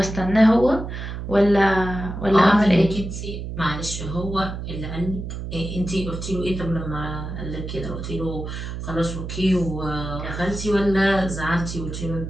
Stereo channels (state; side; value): noise; right; hum, 7 dB below the sound